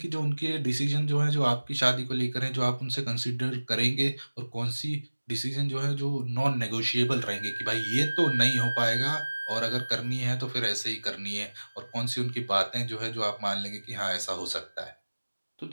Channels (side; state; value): both; inverted; correlation -1.00